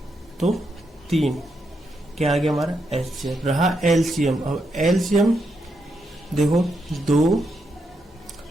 तो 3 क्या आ गया हमारा एचसीएफ। रहा एलसीएम। अब एलसीएम देखो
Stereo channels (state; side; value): normal; both; correlation 0.82